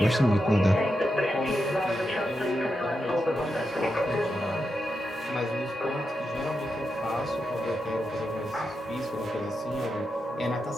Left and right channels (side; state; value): both; normal; correlation 0.87